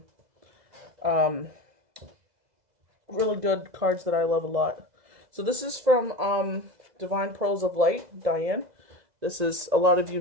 really good cards that I love a lot. So this is from Divine Pearls of Light, Diane. This is, a lot of you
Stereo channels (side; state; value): left; late; 2.0 ms